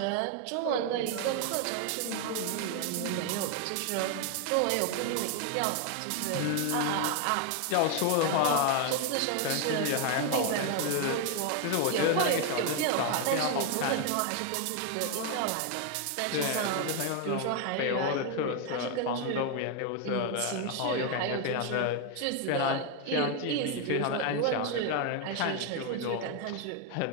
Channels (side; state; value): both; different; correlation 0.01